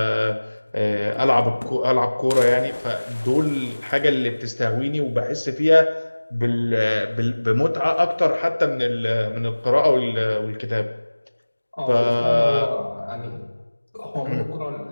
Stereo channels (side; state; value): both; inverted; correlation -1.00